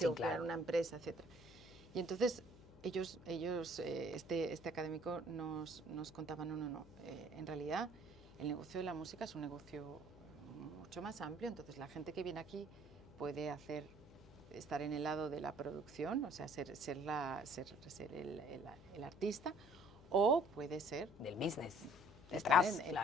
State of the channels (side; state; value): left; noise; hum, 20 dB below the sound